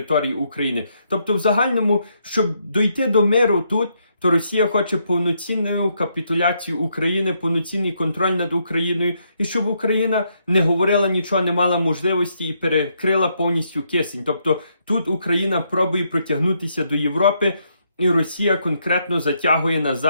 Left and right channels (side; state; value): both; inverted; correlation -0.76